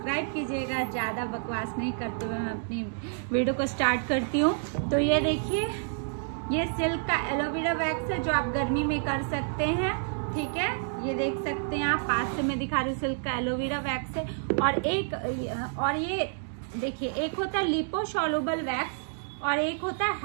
कीजिएगा। ज्यादा बकवास नहीं करते हुए मैं अपनी वीडियो को स्टार्ट करती हूँ। तो ये देखिए, ये सिल्क का एलोवेरा वैक्स है, जो आप गर्मी में कर सकते हैं। ठीक है, ये देख सकते हैं आप, पास से मैं दिखा रही हूँ। सिल्क का एलोवेरा वैक्स है। और ये देखिए, एक होता है लिपोसॉल्युबल वैक्स और एक होता है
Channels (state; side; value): silent; left; digital silence